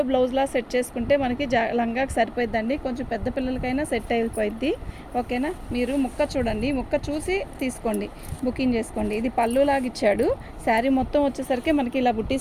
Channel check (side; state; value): both; identical; correlation 1.00